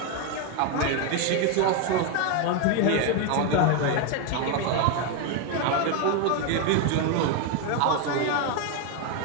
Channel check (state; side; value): different; both; correlation 0.02